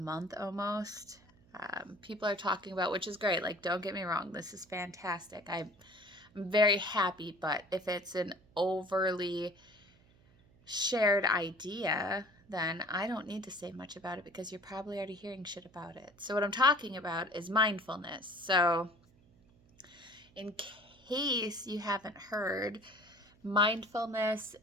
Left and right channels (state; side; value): noise; right; hum, 29 dB below the sound